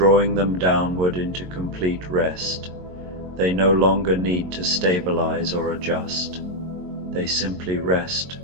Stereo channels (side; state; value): left; late; 22 ms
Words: them downward into complete rest. They no longer need to stabilize or adjust. They simply rest,